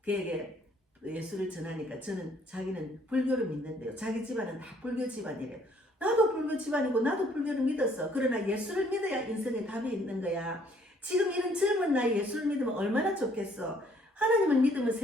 그에게 예수를 전하니까 자기는 불교를 믿는데요. 자기 집안은 다 불교 집안이래요. 나도 불교 집안이고 나도 불교를 믿었어. 그러나 예수를 믿어야 인생에 답이 있는 거야. 지금 이런 젊은 나이에 예수를 믿으면 얼마나 좋겠어. 하나님을 믿으면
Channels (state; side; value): normal; both; correlation 0.63